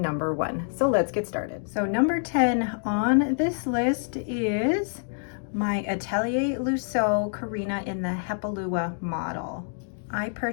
1. So let's get started. So number 10 on this list is my Atellier Luo Karina in the Atellier model. I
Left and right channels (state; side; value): silent; right; digital silence